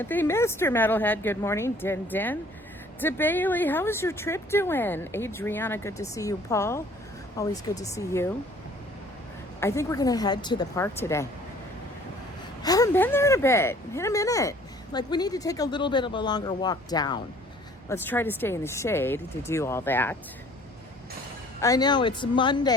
Mr. Metalhead, good morning. Din Din. DeBailey, how is your trip doing? Adriana, good to see you. Paul, always good to see you. I think we're going to head to the park today. Haven't been there in a minute. Like, we need to take a little bit of a longer walk down. Let's try to stay in the shade to do all that. I know, it's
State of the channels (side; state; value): both; normal; correlation 0.54